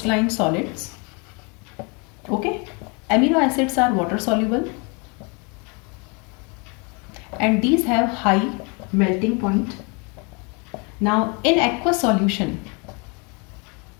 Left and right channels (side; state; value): right; quieter; 31.8 dB